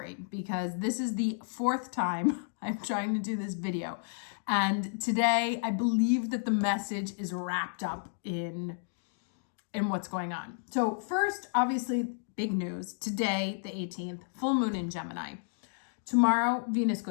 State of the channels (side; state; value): right; silent; digital silence